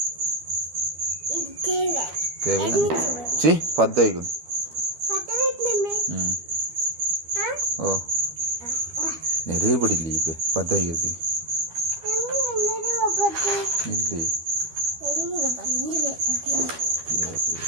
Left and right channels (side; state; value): left; late; 12 ms